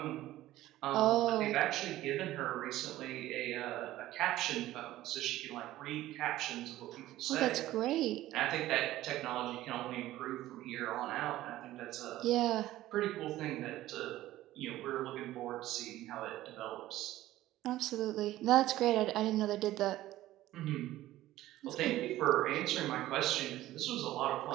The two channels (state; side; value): quieter; left; 15.2 dB